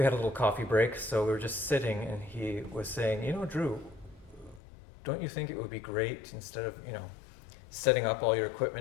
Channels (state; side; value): drops out; right; at 4.6 s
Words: had a little coffee break, so we were just sitting, and he was saying, Drew, don't you think it would be great, instead of, setting up all your